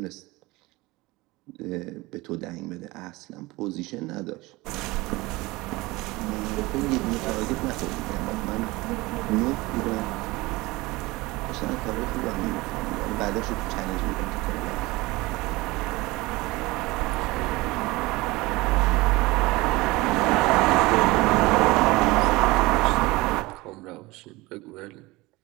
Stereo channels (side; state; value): left; quieter; 21.6 dB